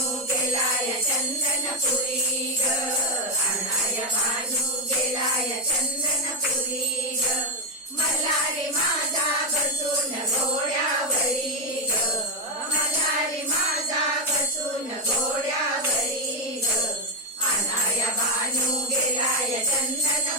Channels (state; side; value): normal; both; correlation 0.08